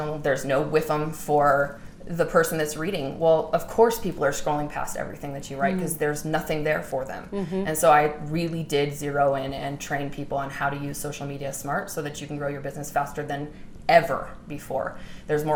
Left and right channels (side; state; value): both; identical; correlation 1.00